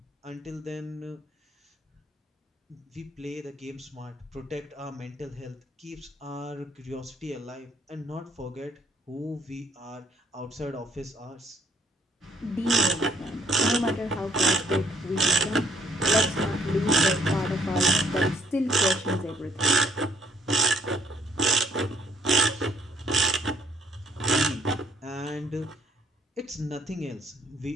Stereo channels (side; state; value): both; normal; correlation 0.65